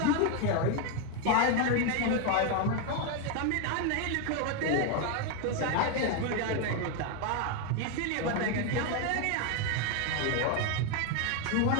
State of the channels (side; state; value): both; different; correlation 0.01